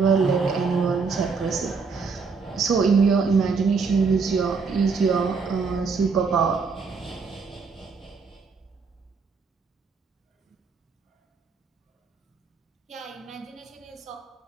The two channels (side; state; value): left; quieter; 5.0 dB